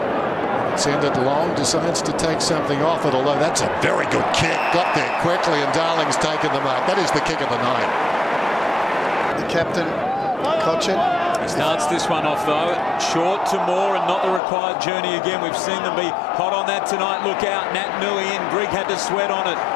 Send it long, decides to take something off it, although that's a very good kick. Got there quickly, and Darling's taken the mark. That is the kick of the night. The captain, Cochin. He starts this one off though, short to Moore and not the required journey again. We've seen them be hot on that tonight. Look out, Nat Nui and Grigg had to sweat on it.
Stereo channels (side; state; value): right; drops out; at 14.4 s